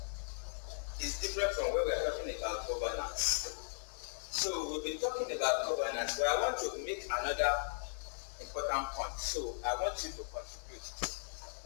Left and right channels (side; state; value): right; silent; digital silence